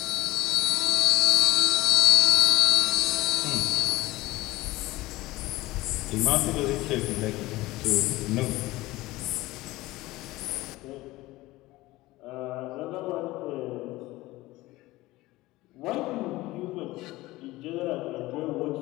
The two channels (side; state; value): right; quieter; 18.8 dB